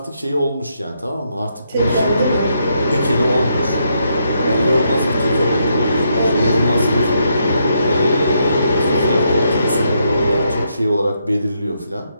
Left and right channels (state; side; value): inverted; both; correlation -0.77